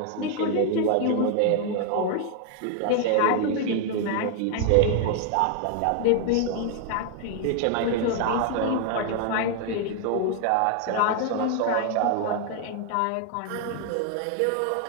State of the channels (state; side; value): different; both; correlation 0.00